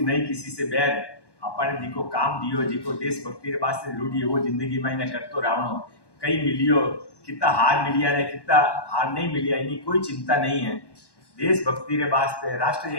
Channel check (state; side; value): late; right; 1.1 ms